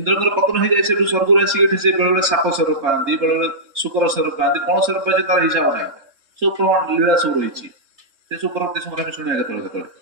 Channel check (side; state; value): left; late; 3.6 ms